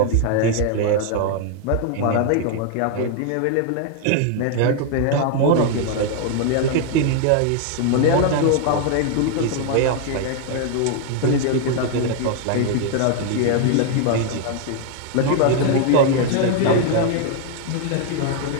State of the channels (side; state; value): both; different; correlation 0.00